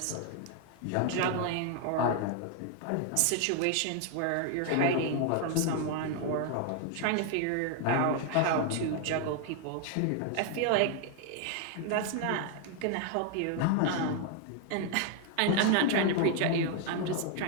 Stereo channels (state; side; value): different; both; correlation 0.00